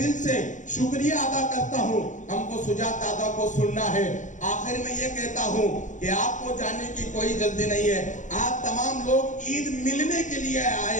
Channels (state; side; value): late; right; 0.36 ms